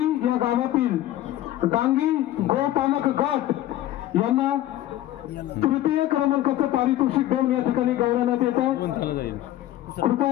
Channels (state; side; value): quieter; right; 13.9 dB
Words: या गावातील डांगी गोपालक गट यांना तृतीय क्रमांकाचं पारितोषिक देऊन या ठिकाणी गौरवण्यात येत आहे.